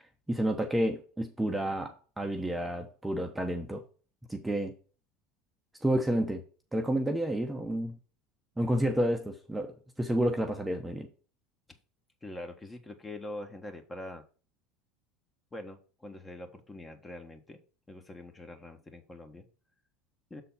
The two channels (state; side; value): normal; both; correlation 0.88